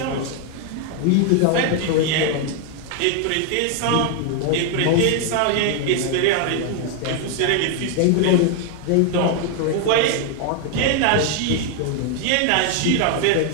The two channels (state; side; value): different; both; correlation 0.00